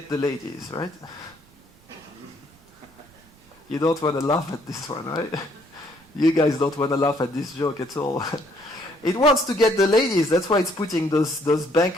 the ladies, right? You don't want to laugh at this one, right? You guys don't want to laugh at this joke at all. It wants to get the ladies. That's why it's putting those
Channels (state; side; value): noise; right; rumble, 29 dB below the sound